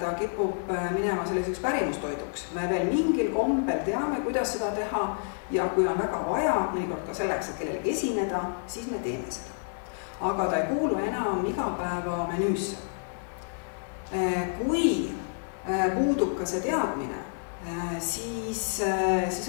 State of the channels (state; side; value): silent; right; digital silence